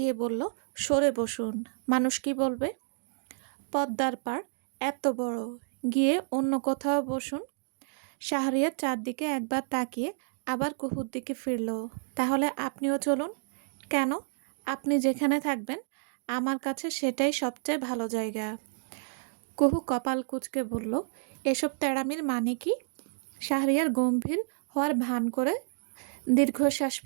বলল, সরে বসুন, মানুষ কি বলবে? পদ্মার পাড় এত বড়, গিয়ে অন্য কোথাও বসুন। শাহরিয়ার চারদিকে একবার তাকিয়ে আবার কুহুর দিকে ফিরল। তাহলে আপনিও চলুন। কেন? আপনি যেখানে থাকবেন আমার কাছে সেটাই সবচেয়ে ভালো জায়গা। কুহু কপাল কুঁচকে বলল, এসব তেড়ামির মানে কি? শাহরিয়ার গম্ভীর হওয়ার ভান করে দীর্ঘশ্বাস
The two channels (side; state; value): left; silent; digital silence